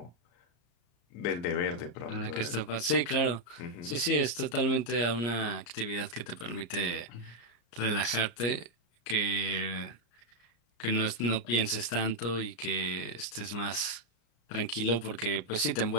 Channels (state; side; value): late; right; 34 ms